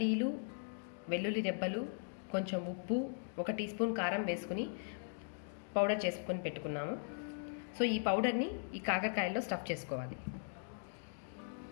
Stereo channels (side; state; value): right; silent; digital silence